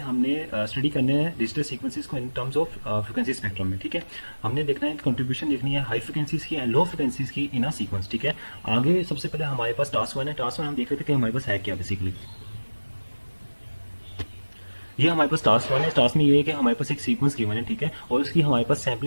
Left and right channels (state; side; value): inverted; both; correlation -1.00